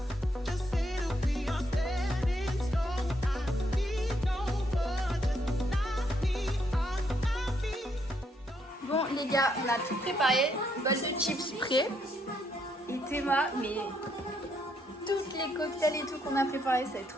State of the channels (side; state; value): both; normal; correlation 0.74